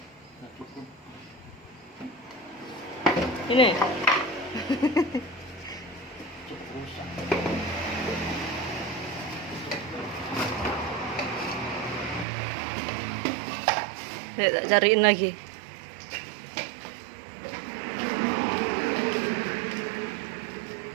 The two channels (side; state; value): left; drops out; at 12.2 s